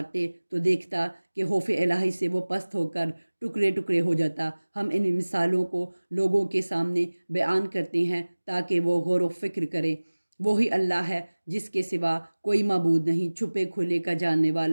تو دیکھتا کہ خوف الہی سے وہ پست ہو کر ٹکڑے ٹکڑے ہو جاتا۔ ہم ان مثالوں کو لوگوں کے سامنے بیان کرتے ہیں تاکہ وہ غور و فکر کریں۔ وہی اللہ ہے جس کے سوا کوئی معبود نہیں، چھپے کھلے کا جاننے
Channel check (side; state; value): both; inverted; correlation -1.00